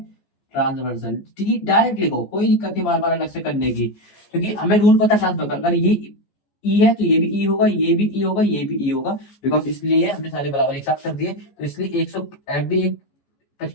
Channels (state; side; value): late; right; 14 ms